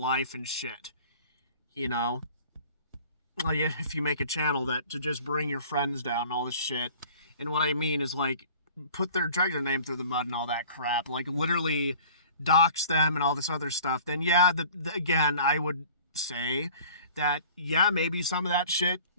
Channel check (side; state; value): both; inverted; correlation -0.48